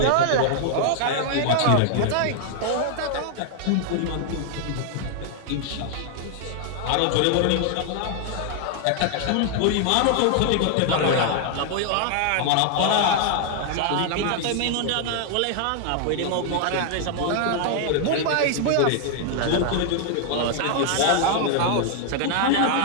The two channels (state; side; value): different; both; correlation 0.00